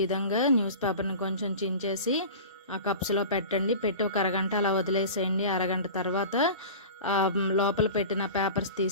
విధంగా న్యూస్ పేపర్ని కొంచెం చించేసి ఆ కప్స్లో పెట్టండి. పెట్టి ఒక అరగంట అలా వదిలేసేయండి. అరగంట తర్వాత లోపల పెట్టిన పేపర్స్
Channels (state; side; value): inverted; both; correlation -0.35